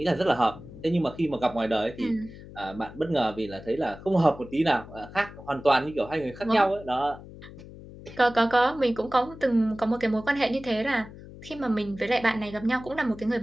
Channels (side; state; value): left; noise; hum, 16 dB below the sound